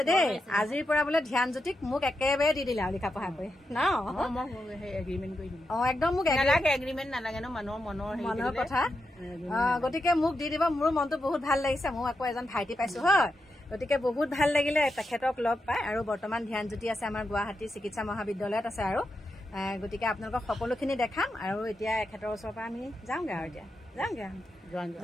দেই আজিৰ পৰা বোলে ধ্যানজ্যোতিক মোক একেবাৰে দি দিলে আৰু লিখা পঢ়া কৰি ন একদম মোক এগ্ৰিমেণ্ট নালাগে ন মনৰ কথা গতিকে মোক দি দিব মোৰ মনটো বহুত ভাল লাগিছে মই আকৌ এজন ভাইটি পাইছো হয় গতিকে বহুত ভাল লাগিলে তেখেতক লগ পাই আৰু বৰ্তমান ধ্যানজ্যোতি আছে আমাৰ গুৱাহাটী চিকিৎসা মহাবিদ্যালয়ত আছে আৰু গতিকে আপোনালোকক সকলোখিনি দেখাম আৰু এতিয়া এখেতৰ ওচৰৰ পৰা আমি যাওঁগে আৰু এতিয়া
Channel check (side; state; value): both; normal; correlation 0.87